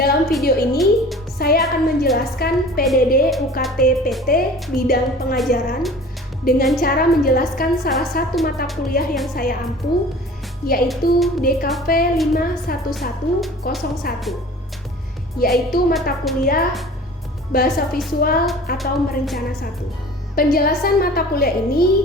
video ini, saya akan menjelaskan PDD UKT PT bidang pengajaran dengan cara menjelaskan salah satu mata kuliah yang saya ampu, yaitu DKV 51101, yaitu mata kuliah Bahasa Visual atau Merencana 1. Penjelasan mata kuliah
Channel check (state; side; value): normal; both; correlation 0.43